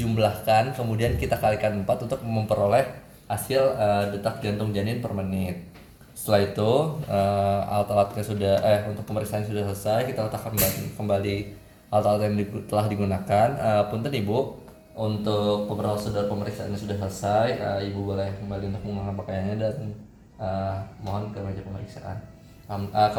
kemudian kita kalikan 4 untuk memperoleh hasil detak jantung janin per menit. Setelah itu alat-alatnya untuk pemeriksaan sudah selesai, kita letakkan kembali alat-alat yang telah digunakan. Punten ibu, untuk prosedur pemeriksaannya sudah selesai. Ibu boleh kembali untuk menggunakan pakaiannya dan mohon ke meja pemeriksaan, ke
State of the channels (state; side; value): identical; both; correlation 1.00